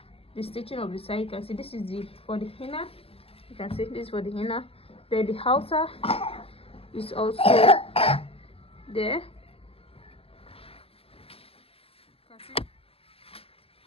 The stitching of the side, you can see this is for the inner. You can see this is for the inner. Then the outer is also there. You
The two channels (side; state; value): right; late; 0.28 ms